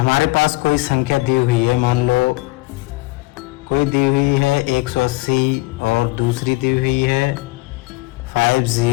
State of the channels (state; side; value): quieter; right; 22.1 dB